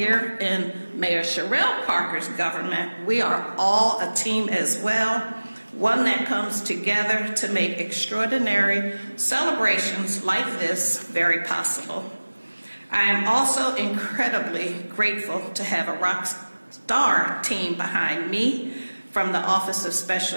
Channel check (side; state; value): both; inverted; correlation -1.00